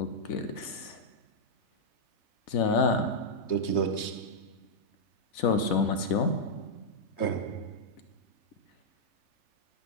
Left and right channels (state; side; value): late; right; 4.1 ms